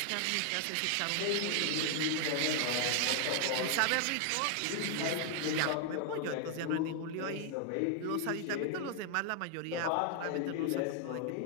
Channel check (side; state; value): both; different; correlation 0.00